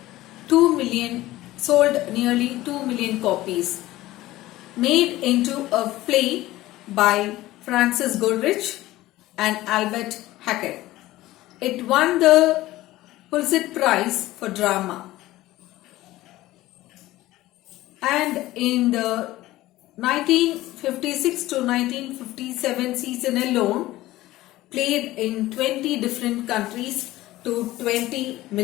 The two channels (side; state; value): right; quieter; 16.8 dB